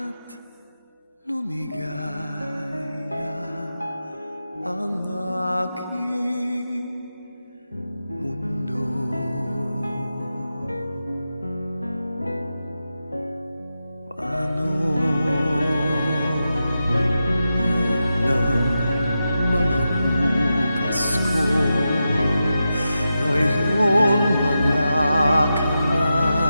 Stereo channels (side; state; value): both; inverted; correlation -0.89